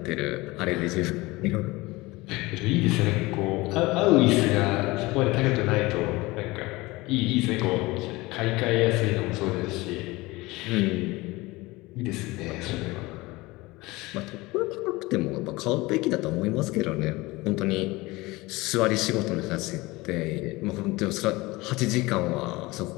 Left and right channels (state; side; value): quieter; right; 21.5 dB